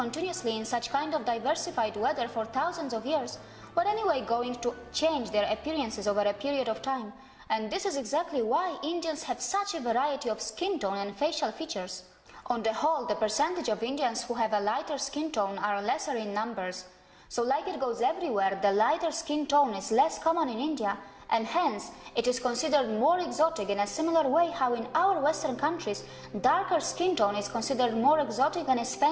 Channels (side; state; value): both; identical; correlation 1.00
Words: in such kind of diversified weather for thousands of years were anyway going to change their appearances over a period of time. And this is exactly why Indians have such a variety of skin tone and facial features. On the whole, the percentage of Indians who have a lighter skin tone are lesser in numbers. So like it goes everywhere, the lighter skin tone is less common in India, and hence it is considered more exotic in a similar way how in our Western countries, darker skin tone is considered more exotic and is